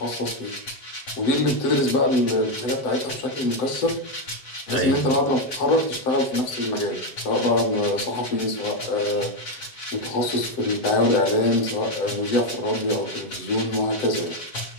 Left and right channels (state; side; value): late; right; 7.5 ms